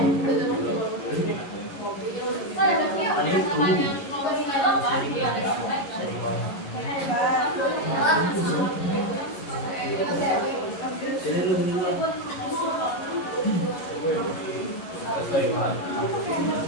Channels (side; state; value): right; late; 11 ms